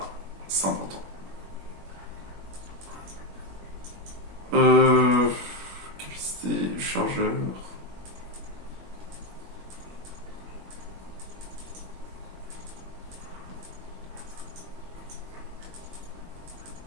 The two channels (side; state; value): left; late; 21 ms